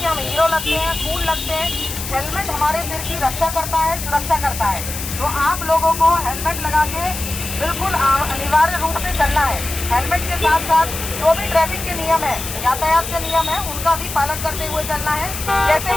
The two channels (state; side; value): noise; left; hiss, 7 dB below the sound